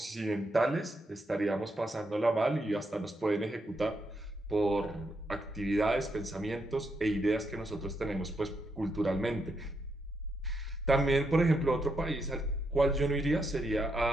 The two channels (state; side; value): normal; both; correlation 0.80